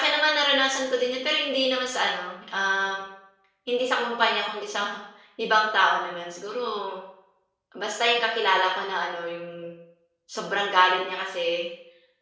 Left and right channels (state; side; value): identical; both; correlation 1.00